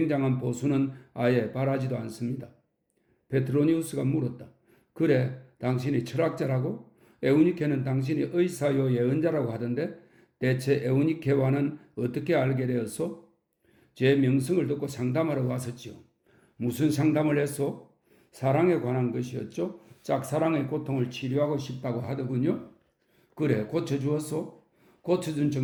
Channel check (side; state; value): both; identical; correlation 1.00